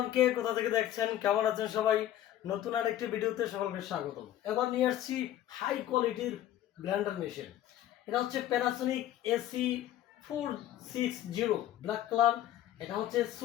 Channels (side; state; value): right; quieter; 12.5 dB